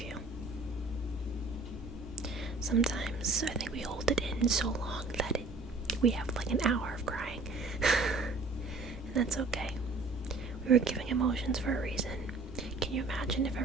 you. Sometimes I think we hold it in so long that we have like an hour of crying. And that's okay. We were giving emotions for a reason. Can you imagine if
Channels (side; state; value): left; quieter; 3.4 dB